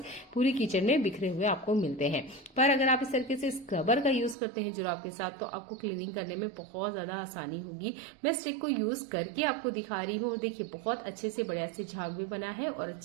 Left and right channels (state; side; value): drops out; left; at 4.4 s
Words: पूरी किचन में बिखरे हुए आपको मिलते हैं। पर अगर आप इस तरीके से स्क्रबर का यूज करते हैं जुराब के साथ तो आपको क्लीनिंग करने में बहुत ज्यादा आसानी होगी। मैं स्टिक को यूज करके आपको दिखा रही हूँ। देखिए, बहुत अच्छे से बढ़िया से झाग भी बना है और